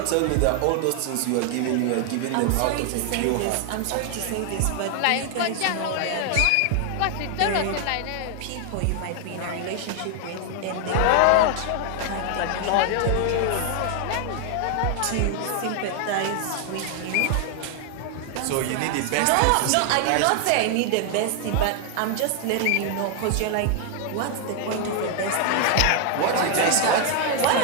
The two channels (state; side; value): different; both; correlation 0.00